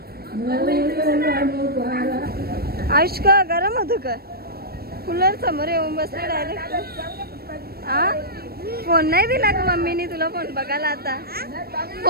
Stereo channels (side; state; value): left; late; 0.45 ms